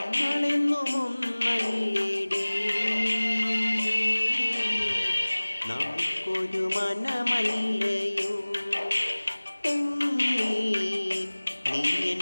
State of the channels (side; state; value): both; inverted; correlation -1.00